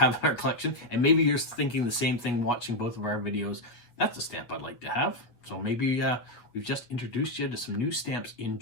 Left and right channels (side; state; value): right; late; 8.4 ms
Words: in our collection, and maybe you're thinking the same thing watching both of our videos. That's a stamp I'd like to have. So maybe we've just introduced you to some new stamps in